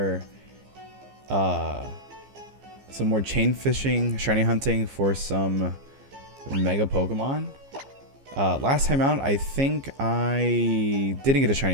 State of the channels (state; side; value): late; left; 15 ms